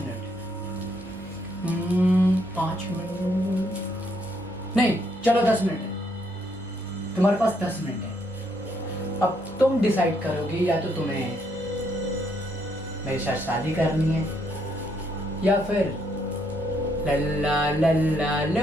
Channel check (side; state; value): both; normal; correlation 0.73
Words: है। 5 मिनट नहीं, चलो 10 मिनट है। तुम्हारे पास 10 मिनट है। अब तुम डिसाइड करोगी या तो तुम्हें मेरे साथ शादी करनी है या फिर लल्ला लल्ला